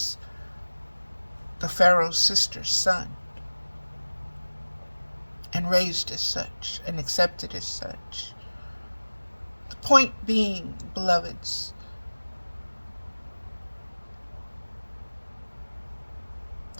the Pharaoh's sister's son and raised as such and accepted as such. The point being, beloveds,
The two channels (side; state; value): both; inverted; correlation -1.00